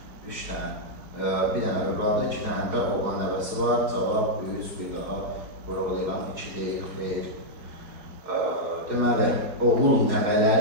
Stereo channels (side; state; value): left; late; 4.6 ms